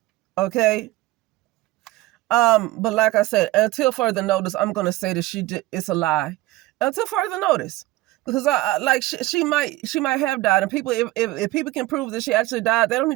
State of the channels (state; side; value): quieter; left; 18.0 dB